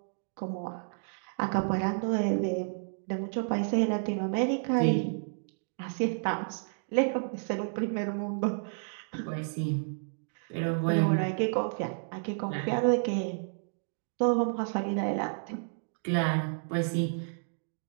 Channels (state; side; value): silent; left; digital silence